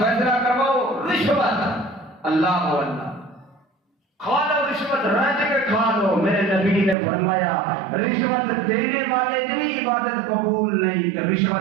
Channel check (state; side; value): drops out; left; at 7.0 s